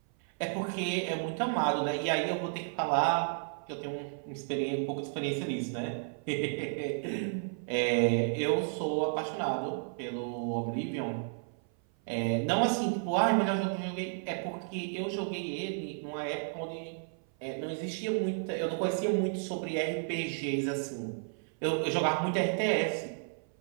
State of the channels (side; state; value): left; silent; 56 dB below the other